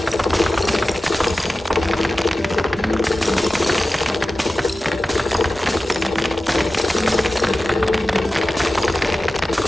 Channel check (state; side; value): normal; both; correlation 0.95